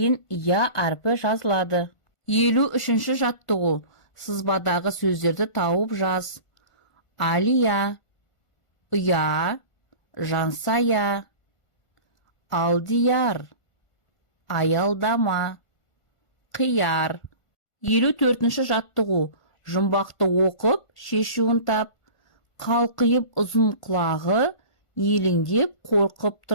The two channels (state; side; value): late; right; 1.5 ms